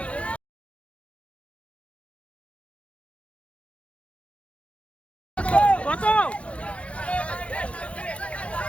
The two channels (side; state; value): right; late; 0.062 ms